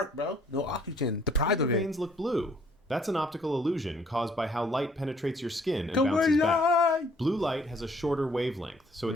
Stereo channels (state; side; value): normal; both; correlation 0.62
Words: bro. No oxygen. Deprived do of your it. veins look blue? That's an optical illusion caused by how light penetrates your skin and Go bounces back. light. Blue light has a shorter wavelength, so it